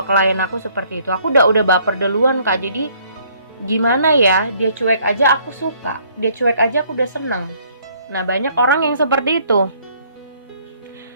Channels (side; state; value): both; inverted; correlation -0.62